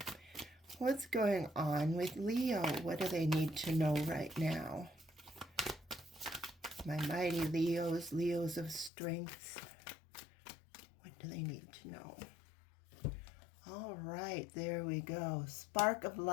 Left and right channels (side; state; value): right; drops out; at 8.9 s